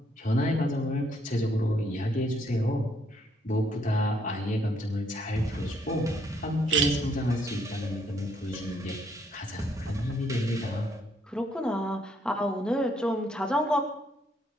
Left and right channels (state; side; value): normal; both; correlation 0.70